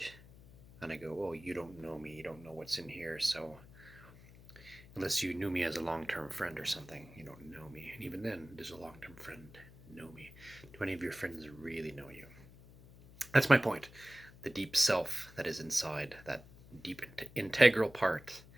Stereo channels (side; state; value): left; noise; hum, 20 dB below the sound